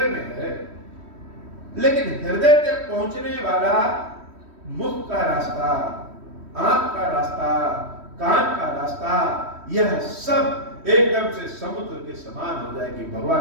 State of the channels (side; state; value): left; late; 3.1 ms